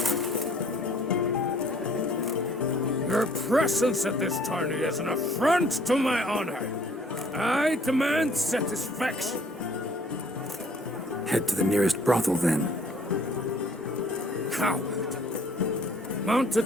Your presence at this tourney is an affront to my honor. I demand satisfaction. Head to the nearest brothel then. Coward.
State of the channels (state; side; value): normal; both; correlation 0.58